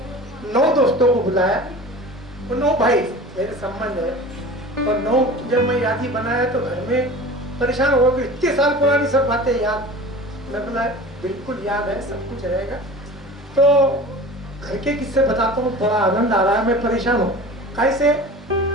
9 दोस्तों को बुलाया। वो 9 भाई मेरे संबंध है, और 9 जब मैं यादी बनाया तो घर में परेशान हो गए, इतने साल पुरानी सब बातें याद। मैं बोला बिल्कुल याद है, सब कुछ रहेगा। तो घर के किस्से बताता हूँ, बड़ा आनंद आ रहा है। मैं परेशान हूँ कैसे,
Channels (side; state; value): both; normal; correlation 0.38